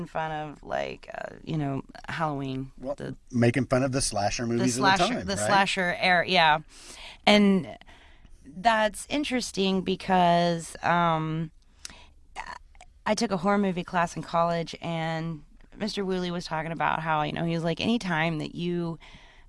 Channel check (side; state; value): both; identical; correlation 1.00